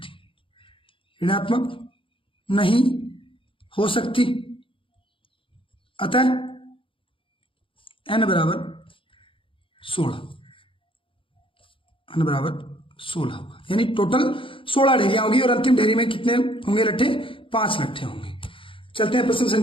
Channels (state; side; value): late; right; 0.25 ms